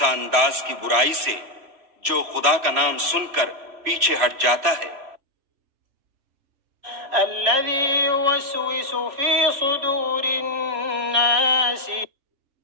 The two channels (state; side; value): late; left; 3.1 ms